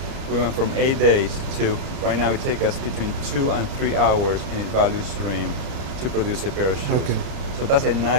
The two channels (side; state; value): left; late; 32 ms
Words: we went from 8 days to, right now it takes us between 2 and 3 hours in its value stream to produce a pair of shoes. Okay. So that's a